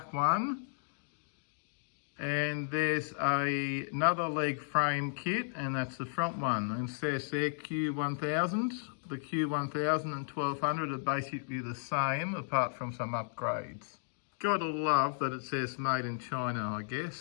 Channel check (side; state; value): right; silent; digital silence